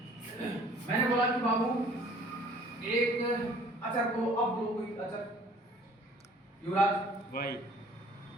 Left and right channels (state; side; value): normal; both; correlation 0.54